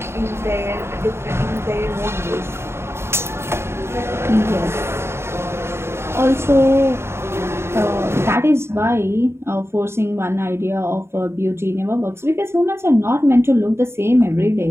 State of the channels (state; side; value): late; left; 0.12 ms